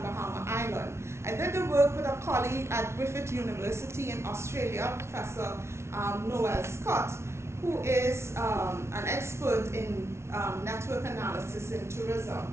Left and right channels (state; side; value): late; left; 0.13 ms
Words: Bahama Island. I did the work with a colleague at Griffith University in Australia, Professor Noel Scott, who is an expert in network analysis in